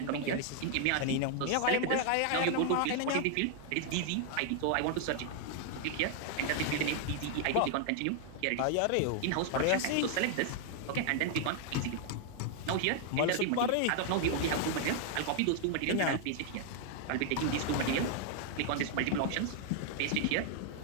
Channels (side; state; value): both; different; correlation 0.00